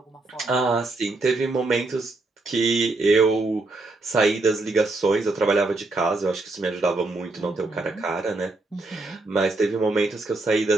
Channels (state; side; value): quieter; left; 3.2 dB